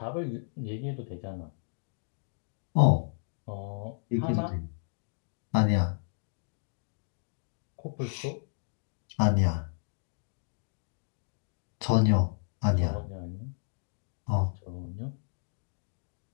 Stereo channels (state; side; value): silent; right; digital silence